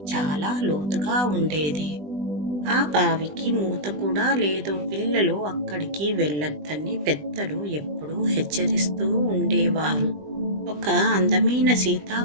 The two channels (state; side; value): late; left; 20 ms